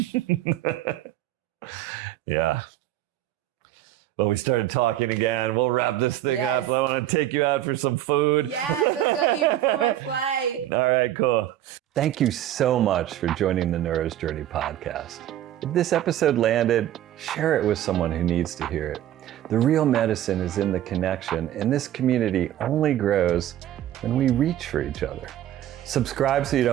Yeah. Well, we started talking again. We'll wrap this thing up. I want to take you out for some food. Yes, let's go eat before my flight. All right, cool. Thank you so much for joining the Neuro's Journey podcast. If this episode landed, share it with someone who needs to hear it. The real medicine is in the connection, and this community only grows when we reach for each other. Subscribe so you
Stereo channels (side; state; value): left; quieter; 12.6 dB